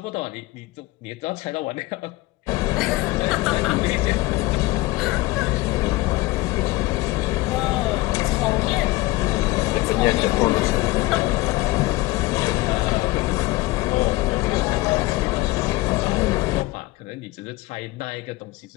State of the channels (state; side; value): quieter; right; 19.9 dB